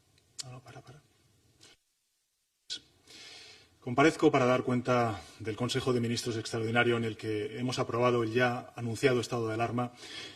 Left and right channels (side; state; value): both; identical; correlation 1.00